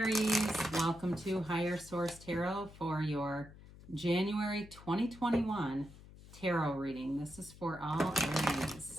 welcome to Higher Source Tarot for your January 2021 tarot reading. This is for all Aries,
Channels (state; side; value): noise; left; hum, 19 dB below the sound